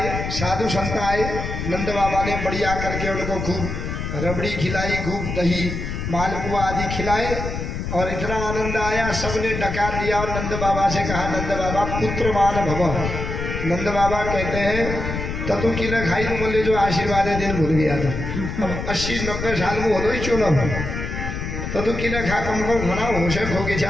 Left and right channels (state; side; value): noise; left; rumble, 5 dB below the sound